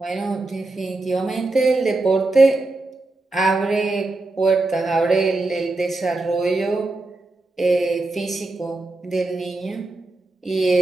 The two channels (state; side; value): quieter; left; 3.0 dB